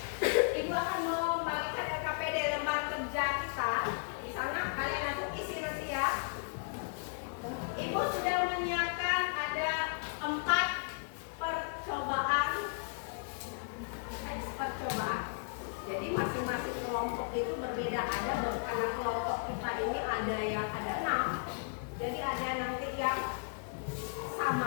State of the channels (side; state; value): right; silent; digital silence